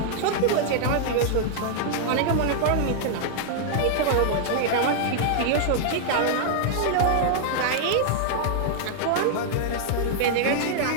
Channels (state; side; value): different; both; correlation -0.01